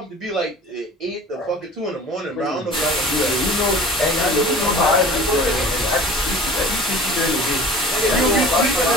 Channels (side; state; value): both; normal; correlation 0.43